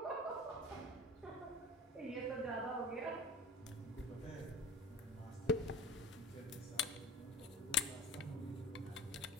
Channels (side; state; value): both; normal; correlation 0.39